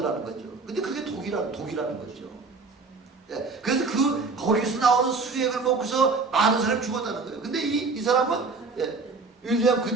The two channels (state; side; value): quieter; left; 4.1 dB